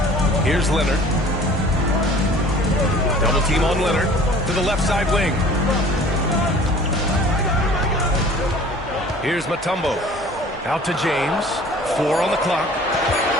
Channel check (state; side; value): normal; both; correlation 0.48